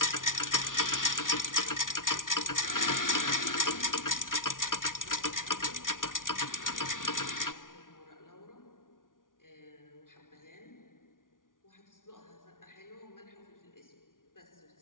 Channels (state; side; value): late; right; 0.89 ms